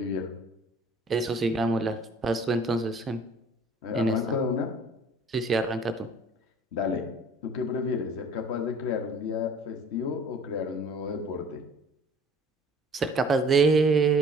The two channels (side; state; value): both; normal; correlation 0.51